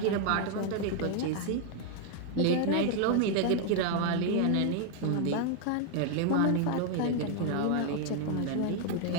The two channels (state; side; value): different; both; correlation 0.00